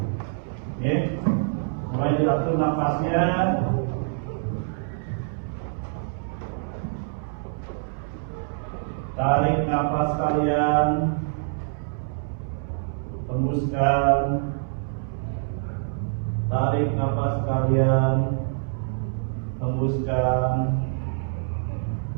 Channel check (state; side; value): silent; left; 61 dB below the other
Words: mulai diatur nafasnya. Tarik nafas kalian, hembuskan. Tarik nafas kalian, hembuskan.